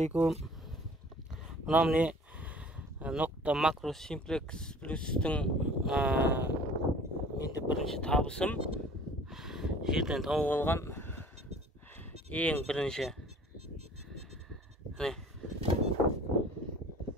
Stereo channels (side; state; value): both; normal; correlation 0.49